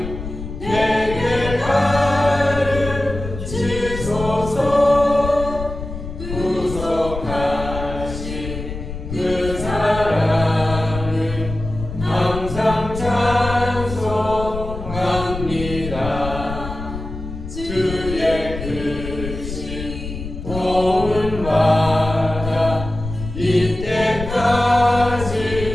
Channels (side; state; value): left; noise; rumble, 8 dB below the sound